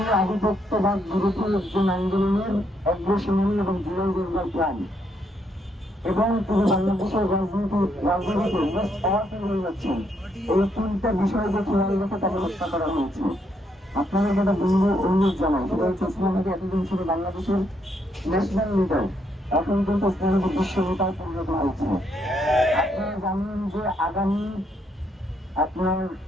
আধিপত্যবাদ বিরোধী একজন আন্দোলনের অগ্রসেনী এবং জুলাই যোদ্ধার প্রাণ, এবং তিনি বাংলাদেশের রাজনীতিতে মোস্ট পাওয়ারফুল হয়ে যাচ্ছেন। এই তিনটা বিষয়কে খেয়াল রেখে তাকে হত্যা করা হয়েছে। আপনাদের যেটা অনুরোধ জানাই সেটা হচ্ছে, উসমান হাদি এতদিন ছিল বাংলাদেশের ন্যাশনাল লিডার, এখন কিন্তু উসমান হাদি বিশ্ব নেতায় পরিণত হয়েছে। আপনারা জানেন যে আগামী আপনার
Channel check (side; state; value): both; normal; correlation 0.75